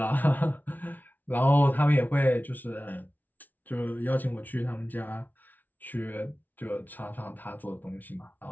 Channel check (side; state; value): right; late; 0.081 ms